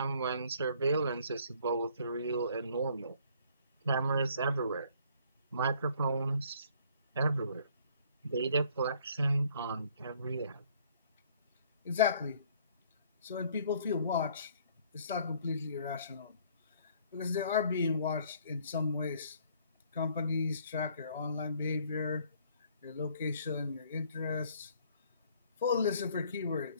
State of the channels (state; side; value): inverted; both; correlation -0.60